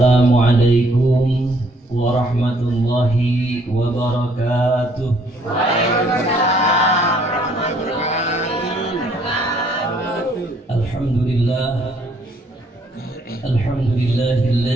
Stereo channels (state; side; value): normal; both; correlation 0.65